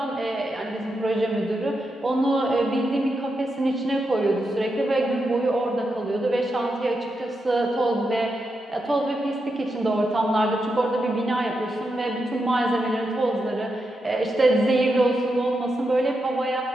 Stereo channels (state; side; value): normal; both; correlation 0.86